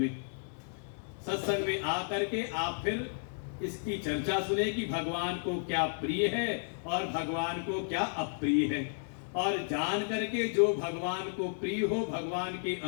सत्संग में आकर के आप फिर इसकी चर्चा सुने कि भगवान को क्या प्रिय है और भगवान को क्या अप्रिय है, और जान करके जो भगवान को प्रिय हो, भगवान के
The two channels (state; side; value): silent; right; digital silence